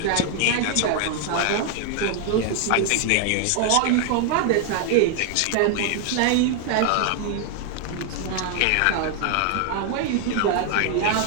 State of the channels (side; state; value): both; different; correlation 0.00